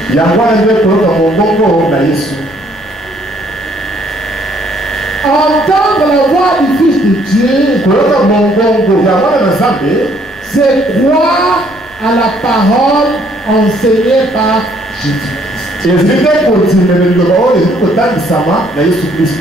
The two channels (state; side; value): noise; left; rumble, 25 dB below the sound